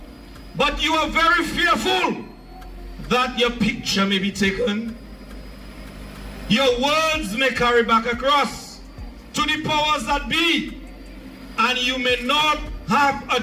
But you are very fearful that your picture may be taken. Your words may carry back across to the powers that be, and you may not have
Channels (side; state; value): both; identical; correlation 1.00